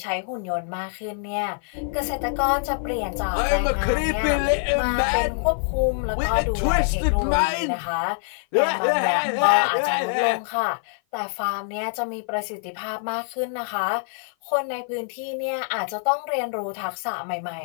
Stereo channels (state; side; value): silent; right; 55 dB below the other